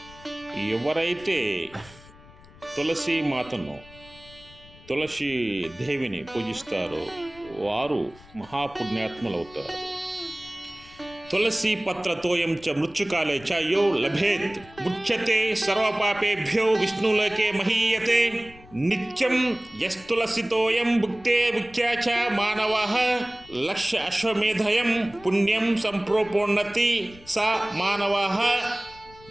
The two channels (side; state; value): left; noise; rumble, 22 dB below the sound